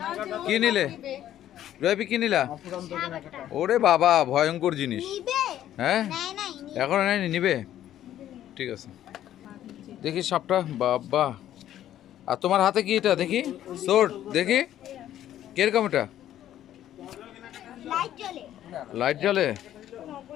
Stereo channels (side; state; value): right; quieter; 11.9 dB